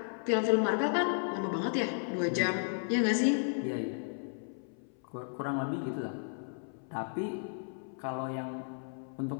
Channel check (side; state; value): right; silent; 55 dB below the other